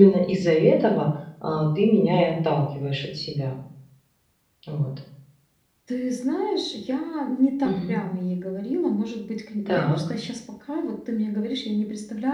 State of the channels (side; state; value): both; identical; correlation 1.00